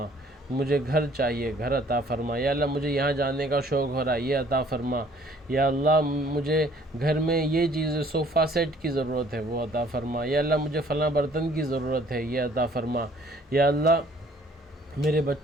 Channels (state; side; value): normal; both; correlation 0.58